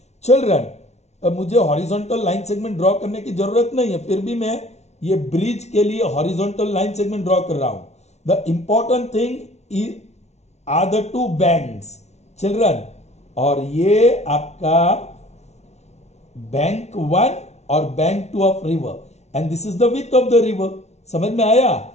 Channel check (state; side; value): late; right; 0.32 ms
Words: children, मुझे horizontal line segment draw करने की जरूरत नहीं है, फिर भी मैं ये ब्रिज के लिए हॉरिजॉन्टल लाइन सेगमेंट ड्रॉ कर रहा हूं. The important thing are the two banks children, और ये आपका बैंक 1 और bank 2 of river, and this is the width of the river. समझ में आया?